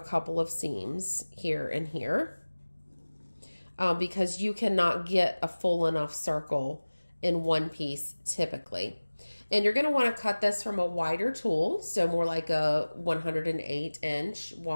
couple of seams here and here because you cannot get a full enough circle in one piece typically. And you're going to want to cut this from a wider tulle, so more like a 108-inch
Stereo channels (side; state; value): both; inverted; correlation -1.00